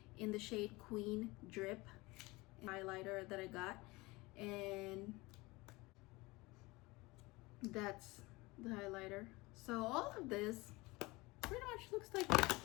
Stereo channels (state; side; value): quieter; right; 22.7 dB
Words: in the shade Queen Drip highlighter that I got, and that's the highlighter. So all of this pretty much looks like,